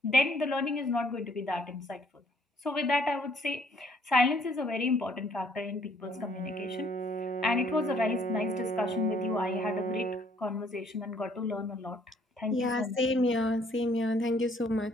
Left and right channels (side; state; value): both; normal; correlation 0.64